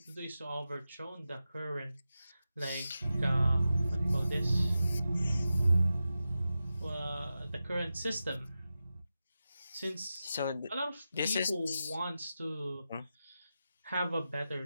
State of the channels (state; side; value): inverted; both; correlation -0.92